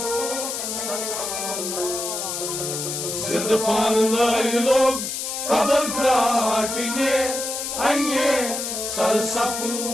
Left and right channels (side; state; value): left; noise; hiss, 4 dB below the sound